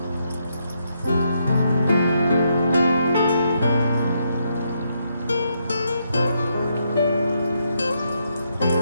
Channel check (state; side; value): inverted; both; correlation -0.78